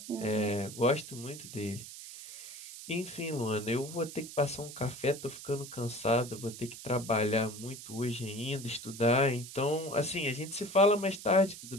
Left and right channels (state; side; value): noise; right; hiss, 12 dB below the sound